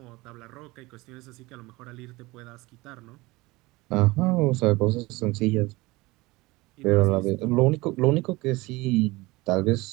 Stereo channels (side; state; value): left; quieter; 21.7 dB